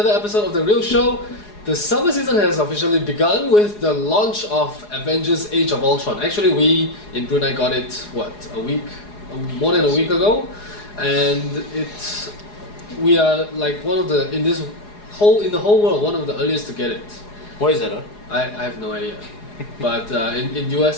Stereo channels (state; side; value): late; right; 4.8 ms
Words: episode of The Real Show. The summer season has officially begun with the launch of Avengers Age of Ultron. Actually, we in Brunei got it, more than a week ago. And we are like one of the, in the whole world, one of the earliest to get it. Why is that, huh? I have no idea. But in